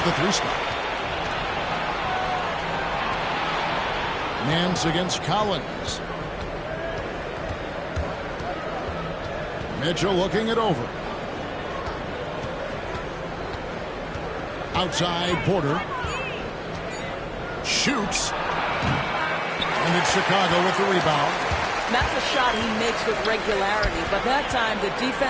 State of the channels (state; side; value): identical; both; correlation 1.00